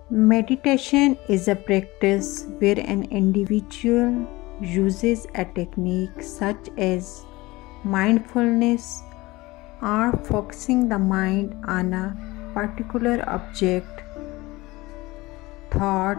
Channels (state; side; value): quieter; right; 20.7 dB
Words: Meditation is a practice where an individual uses a technique such as mindfulness or focusing the mind on a particular object,